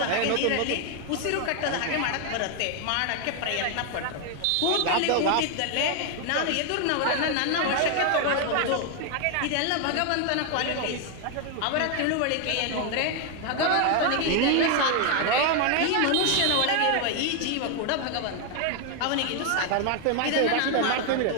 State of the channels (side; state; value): both; different; correlation 0.01